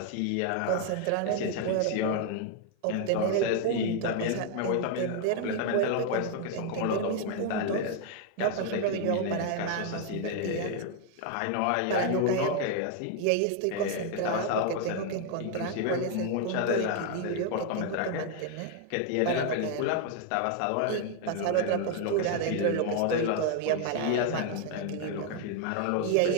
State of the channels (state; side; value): different; both; correlation 0.00